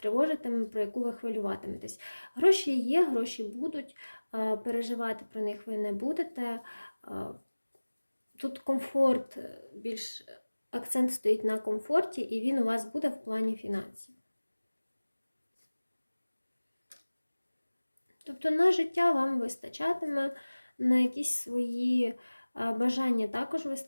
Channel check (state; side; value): inverted; both; correlation -1.00